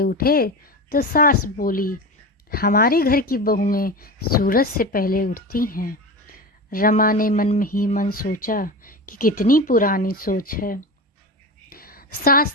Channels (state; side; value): normal; both; correlation 0.26